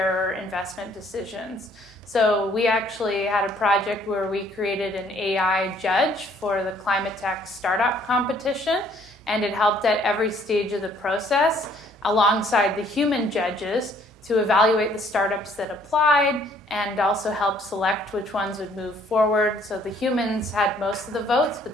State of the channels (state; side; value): normal; both; correlation 0.62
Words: investment decisions. So we actually had a project where we created an AI judge for the Climate Tech Startup Competition, and it helped at every stage of the process alongside the human judges to evaluate the startups that applied and also help select which ones would move forward. So the humans had most of the votes, but